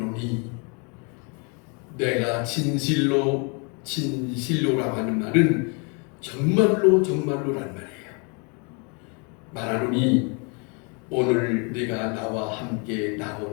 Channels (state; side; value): quieter; right; 34.6 dB